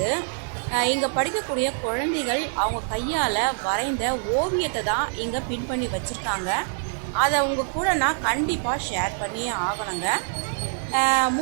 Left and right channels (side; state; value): left; silent; 62 dB below the other